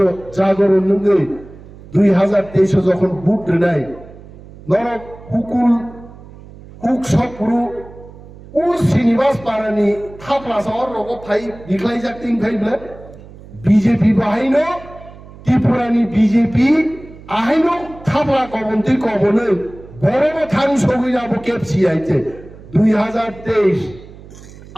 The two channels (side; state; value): right; noise; hum, 19 dB below the sound